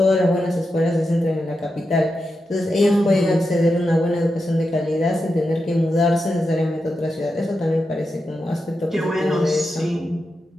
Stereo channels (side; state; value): both; normal; correlation 0.88